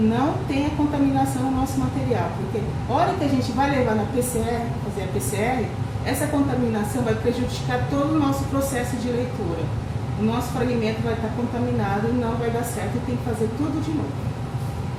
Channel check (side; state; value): both; identical; correlation 1.00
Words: tenha contaminação no nosso material, porque a hora que a gente vai levar na PCR, fazer a PCR, essa contaminação vai prejudicar todo o nosso processo de leitura. O nosso fragmento vai estar contaminado e não vai dar certo, e tem que fazer tudo de novo.